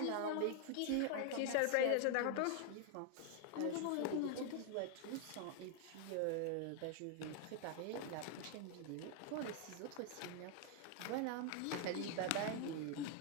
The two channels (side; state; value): both; different; correlation 0.00